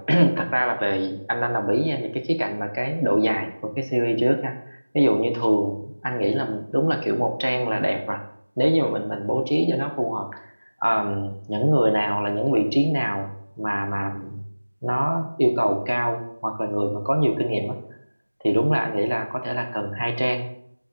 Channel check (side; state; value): both; inverted; correlation -1.00